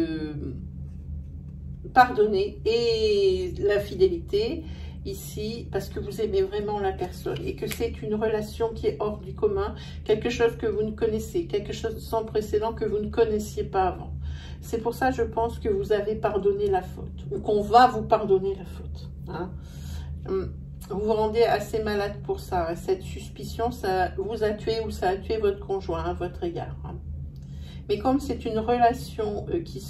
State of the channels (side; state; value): both; identical; correlation 1.00